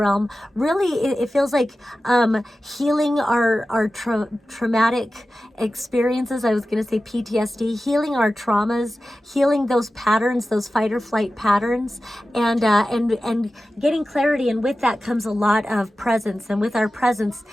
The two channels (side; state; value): both; normal; correlation 0.94